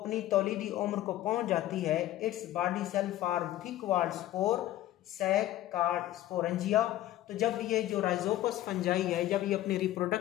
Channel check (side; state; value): right; quieter; 14.2 dB